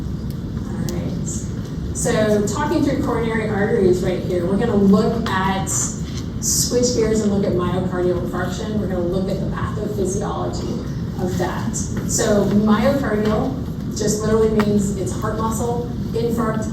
So talking through coronary arteries right here, we're gonna look at, switch gears and look at myocardial infarction. We're gonna look at the pathophysiology of that. So myocardial just literally means it's heart muscle. Infarct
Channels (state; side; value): identical; both; correlation 1.00